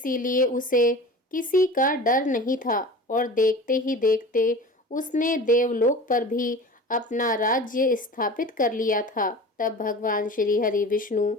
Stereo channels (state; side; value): normal; both; correlation 0.37